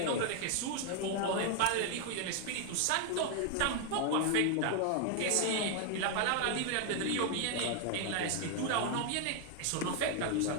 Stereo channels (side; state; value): both; different; correlation 0.00